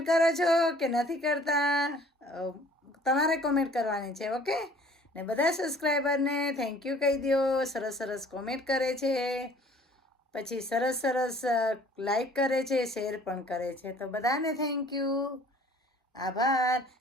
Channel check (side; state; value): both; normal; correlation 0.53